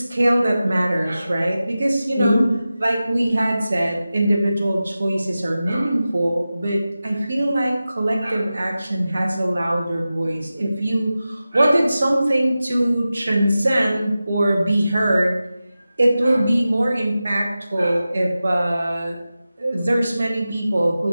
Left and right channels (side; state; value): both; inverted; correlation -0.94